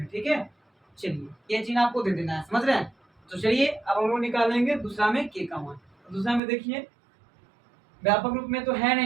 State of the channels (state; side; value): drops out; left; at 6.4 s